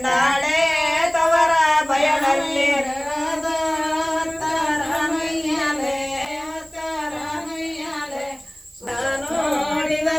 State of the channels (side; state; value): right; noise; hiss, 25 dB below the sound